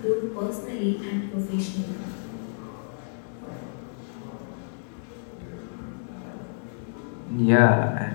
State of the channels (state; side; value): silent; right; digital silence